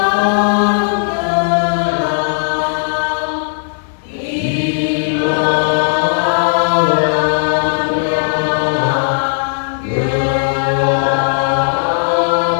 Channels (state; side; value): silent; right; digital silence